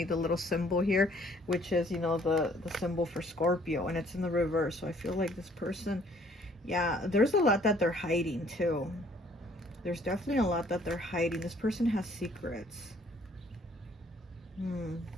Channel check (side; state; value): both; normal; correlation 0.60